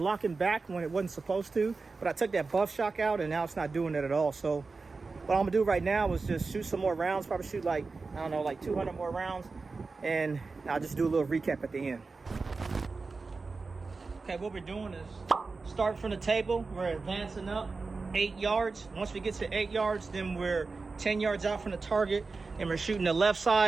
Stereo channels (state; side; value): quieter; left; 4.1 dB